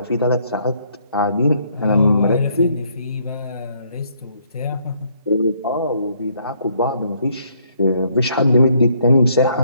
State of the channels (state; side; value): inverted; both; correlation -0.68